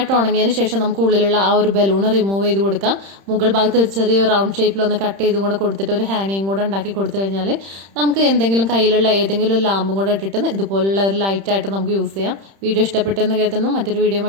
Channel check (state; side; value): late; left; 31 ms